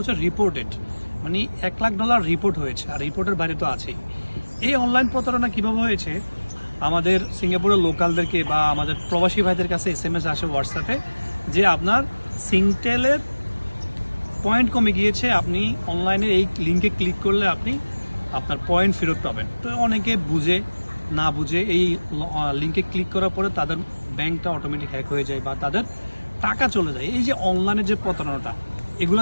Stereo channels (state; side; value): inverted; both; correlation -1.00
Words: রিপোর্টেড, মানে $1 লাখ রিপোর্ট হয়েছে, আর রিপোর্টের বাইরে তো আছেই। এই অনলাইন প্রতারণা কীভাবে হয়েছে, আমাদের সিঙ্গাপুরের লোকালদেরকে বা আমাদের প্রবাসী ভাইদের কাছে SMS আসে হোয়াটসঅ্যাপে যে আপনার সিংটেলের পয়েন্ট কমে গিয়েছে, আপনি অনলাইনে এই লিঙ্কে ক্লিক করলে আপনি আপনার পয়েন্ট ফেরত পাবেন। তো অনেকে বুঝে না বুঝে এই লিঙ্কে ক্লিক করার পরে তাদের ব্যাংকটা অটোমেটিক হ্যাক হয়ে যায় বা তাদের টাকা চলে যায়। এই যে অনলাইনে যে প্রতারণাটা, এগুলো